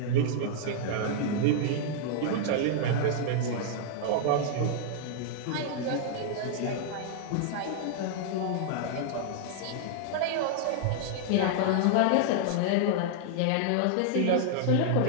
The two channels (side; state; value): both; different; correlation -0.01